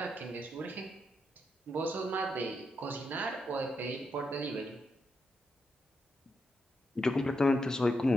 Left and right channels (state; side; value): normal; both; correlation 0.83